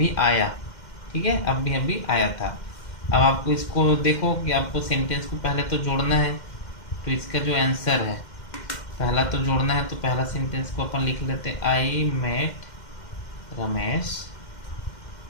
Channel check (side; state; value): right; late; 2.1 ms